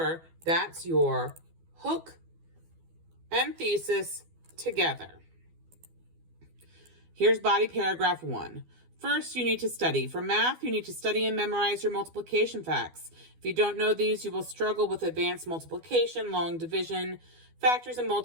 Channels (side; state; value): left; late; 12 ms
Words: that's your hook and thesis together. Here's body paragraph 1. First, you need to study. For math, you need to study and memorize your multiplication facts. If you don't know these, you will struggle with advanced multiplication, long division, factors and